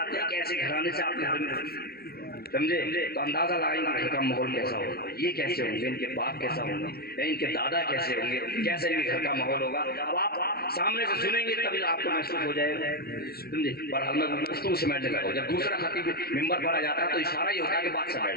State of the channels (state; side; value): late; right; 0.45 ms